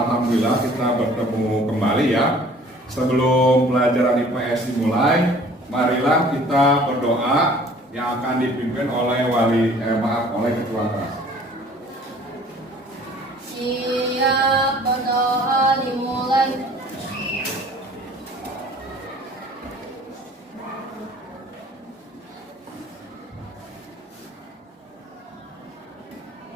kita bertemu kembali ya. Sebelum pelajaran IPS dimulai, marilah kita berdoa yang akan dipimpin oleh oleh ketua kelas. Siap, berdoa dimulai.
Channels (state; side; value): normal; both; correlation 0.51